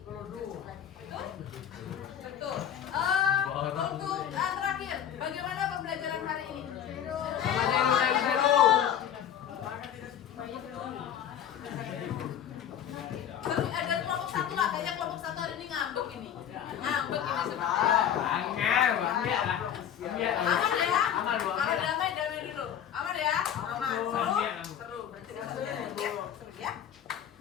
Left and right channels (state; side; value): quieter; right; 9.6 dB